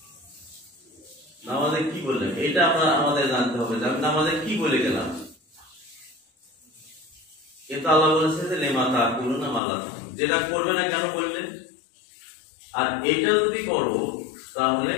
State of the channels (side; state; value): right; drops out; at 9.6 s